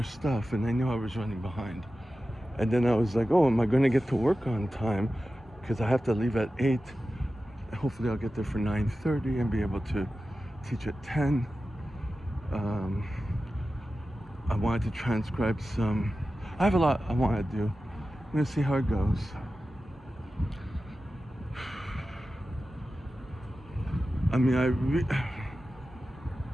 stuff, and I knew I was running behind. And then I was like, oh, am I going to get to work on time? Because I have to leave at 8. Hopefully I'll get there for 9:30 and be able to teach at 10. I wanted to transcribe some. I have a lot I want to do. I'm going to see how it goes. I mean,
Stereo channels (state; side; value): normal; both; correlation 0.94